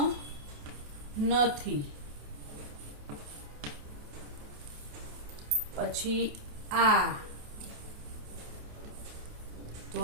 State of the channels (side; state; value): left; late; 28 ms